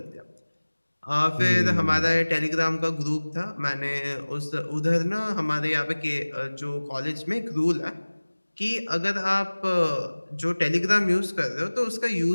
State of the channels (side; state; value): both; inverted; correlation -1.00